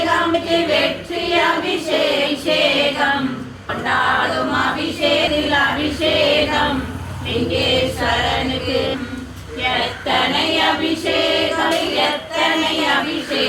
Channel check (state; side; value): identical; both; correlation 1.00